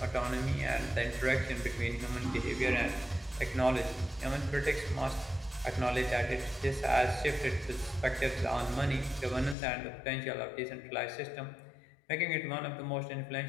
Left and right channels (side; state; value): right; drops out; at 9.6 s